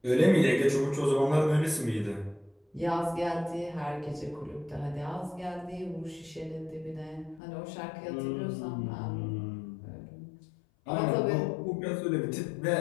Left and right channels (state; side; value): drops out; right; at 7.4 s